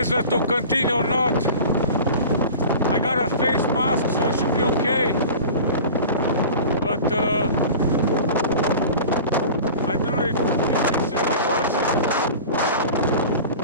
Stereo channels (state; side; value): inverted; both; correlation -0.37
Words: to continue or not. I got a face mask, so I should be okay. But I don't know if it's really worth it.